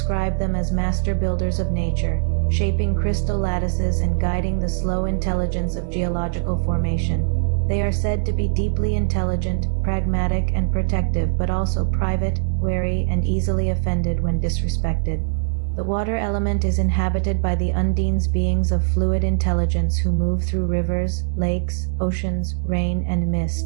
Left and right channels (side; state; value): left; silent; 65 dB below the other